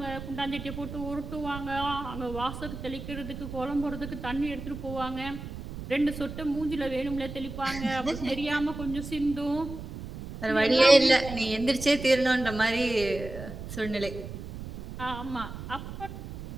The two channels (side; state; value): right; noise; rumble, 10 dB below the sound